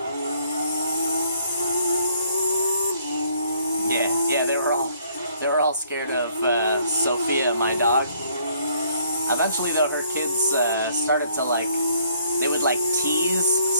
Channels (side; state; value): both; inverted; correlation -0.65